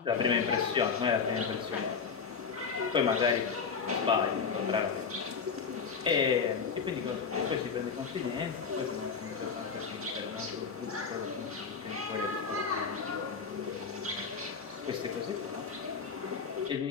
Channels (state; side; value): quieter; right; 5.7 dB